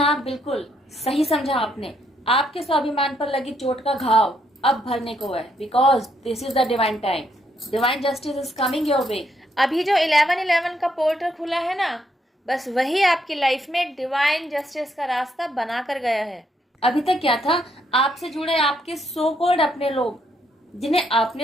हाँ, बिल्कुल सही समझा आपने। आपके स्वाभिमान पर लगी चोट का घाव अब भरने को है, because this is the divine time. Divine justice is coming your way. अभी जो 11/11 का पोर्टल खुला है ना, बस वही आपकी लाइफ में डिवाइन जस्टिस का रास्ता बना कर गया है। अभी तक क्या था, आपसे जुड़े आपके सो कॉल्ड अपने लोग, जिन्हें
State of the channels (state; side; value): normal; both; correlation 0.74